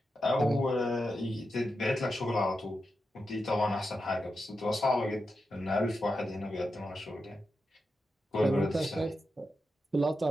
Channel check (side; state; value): both; normal; correlation 0.88